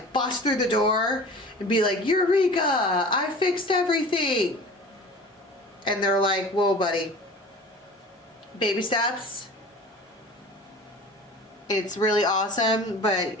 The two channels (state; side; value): normal; both; correlation 0.40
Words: bust through the door and be like, Eureka, I fixed everything. And they're like, whoa, buddy. Baby steps. It's really awesome, but